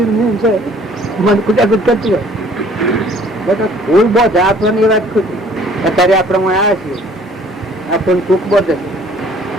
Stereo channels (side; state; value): both; normal; correlation 0.55